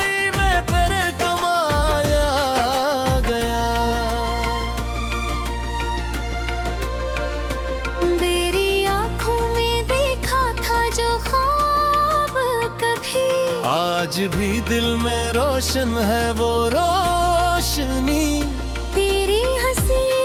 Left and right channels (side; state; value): both; identical; correlation 1.00